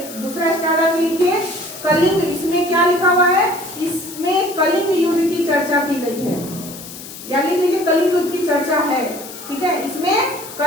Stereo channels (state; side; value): noise; left; hiss, 13 dB below the sound